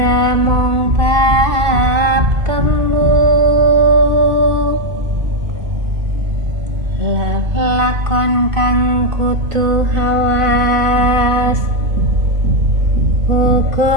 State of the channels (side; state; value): left; late; 2.5 ms